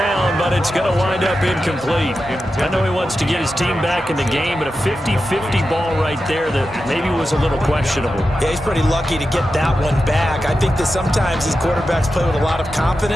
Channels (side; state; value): both; normal; correlation 0.91